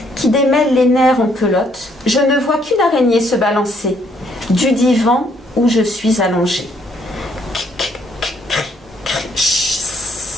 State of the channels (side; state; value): both; normal; correlation 0.68